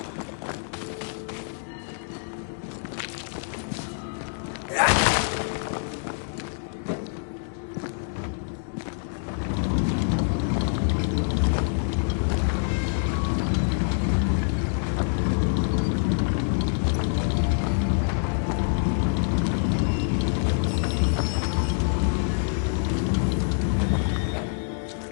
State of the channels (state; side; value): silent; right; digital silence